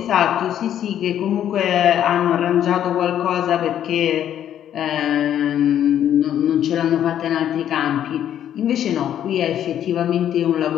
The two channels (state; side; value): quieter; right; 10.4 dB